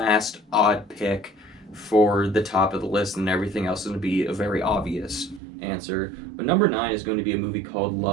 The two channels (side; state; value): left; drops out; at 5.4 s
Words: odd pick for the top of the list, and everything else is going to be a very obvious answer. But number 9 is going to be a movie called